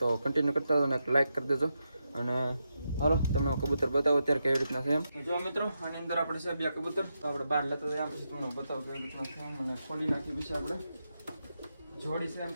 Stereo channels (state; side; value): inverted; both; correlation -0.86